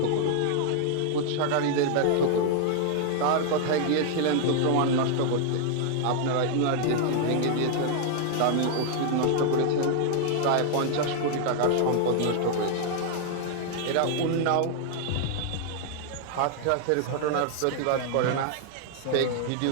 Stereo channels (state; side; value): different; both; correlation 0.00